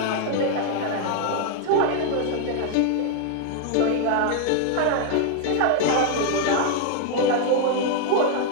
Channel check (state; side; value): different; both; correlation 0.00